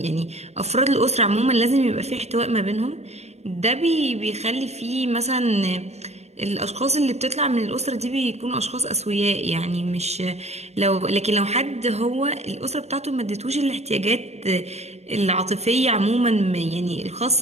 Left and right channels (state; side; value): late; left; 0.31 ms